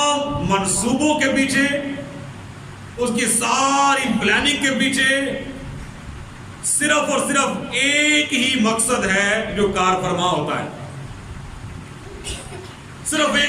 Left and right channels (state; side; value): identical; both; correlation 1.00